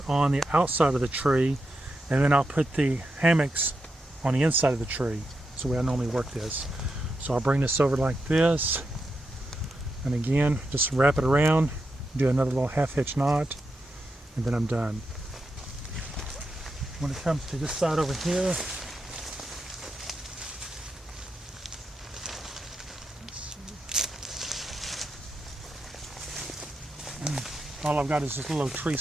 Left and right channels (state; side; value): normal; both; correlation 0.86